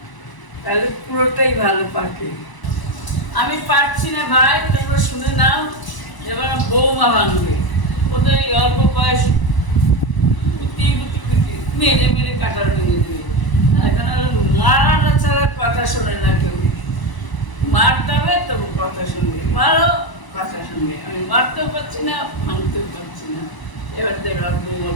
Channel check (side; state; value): right; late; 1.0 ms